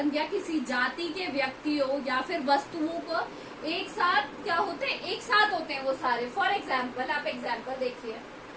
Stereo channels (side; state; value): both; identical; correlation 1.00